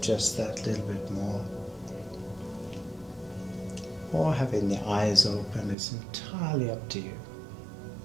just that little bit more. Or having the eyes open is entirely up to you.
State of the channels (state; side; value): drops out; left; at 5.8 s